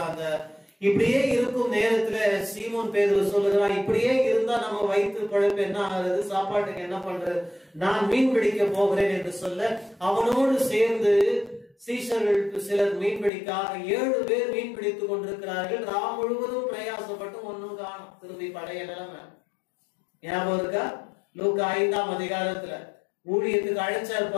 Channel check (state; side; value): drops out; right; at 13.3 s